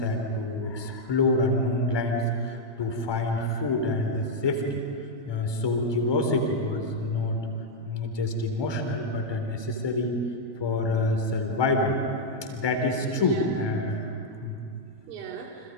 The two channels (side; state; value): right; late; 1.2 ms